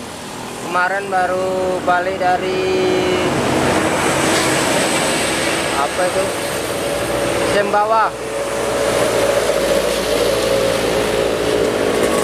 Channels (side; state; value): both; identical; correlation 1.00